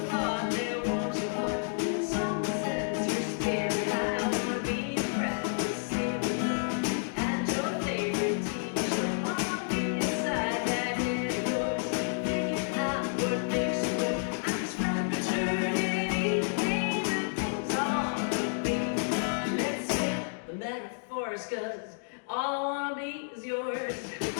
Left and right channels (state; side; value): silent; right; digital silence